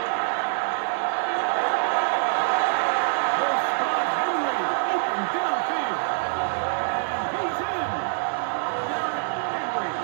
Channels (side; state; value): left; silent; digital silence